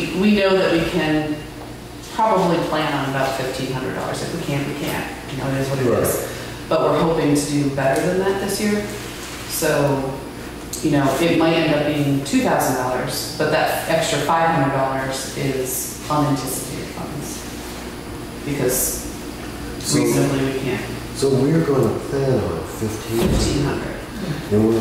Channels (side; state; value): both; identical; correlation 1.00